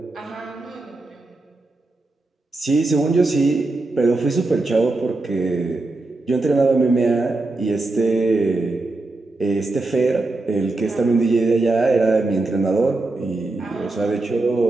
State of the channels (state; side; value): quieter; left; 3.1 dB